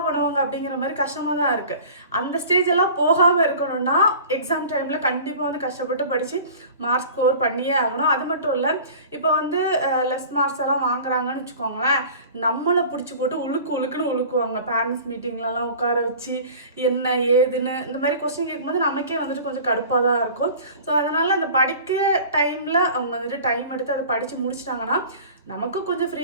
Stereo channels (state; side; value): inverted; both; correlation -0.42